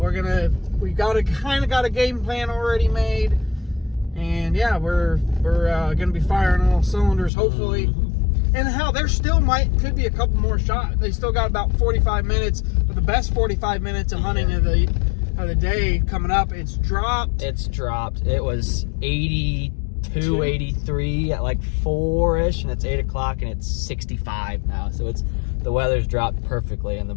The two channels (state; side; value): drops out; right; at 7.3 s